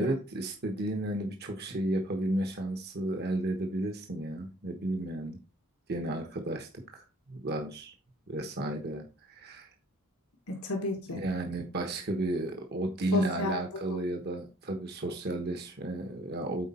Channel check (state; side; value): normal; both; correlation 0.57